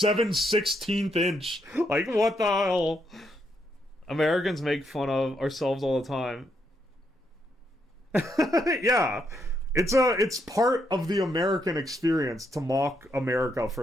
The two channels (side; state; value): both; normal; correlation 0.77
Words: inch. Like, what the hell? Americans make fun of ourselves all the time. Yeah. It's part of the American experience to mock America